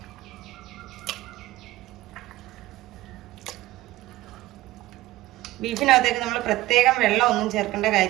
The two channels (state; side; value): quieter; left; 17.4 dB